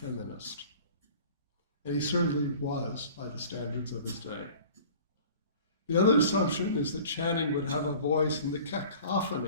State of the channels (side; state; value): both; inverted; correlation -0.45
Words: And he certainly was by the standards of his day. The other assumption is that Channing would have a voice in the